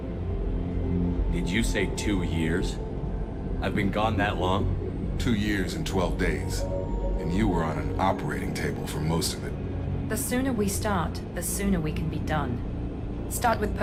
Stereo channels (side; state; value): both; identical; correlation 1.00